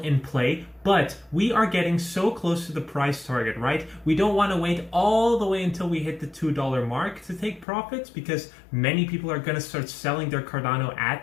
play, but we are getting so close to the price target, right? We don't want to wait all the way until we hit the $2 mark to take profits, because many people are going to start selling their Cardano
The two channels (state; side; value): drops out; right; at 7.7 s